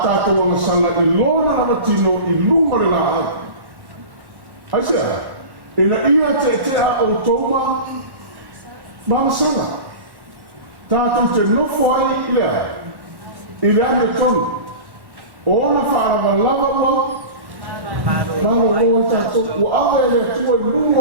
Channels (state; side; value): late; left; 1.1 ms